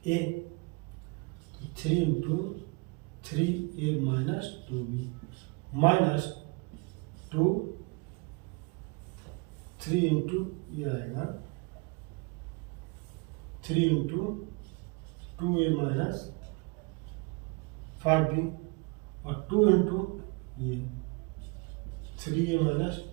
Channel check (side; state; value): left; quieter; 29.4 dB